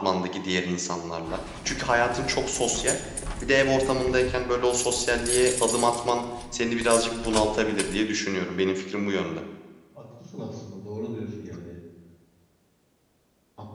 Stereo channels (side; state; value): both; identical; correlation 1.00